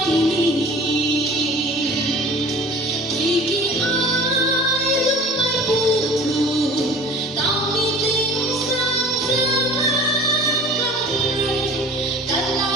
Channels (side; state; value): both; normal; correlation 0.43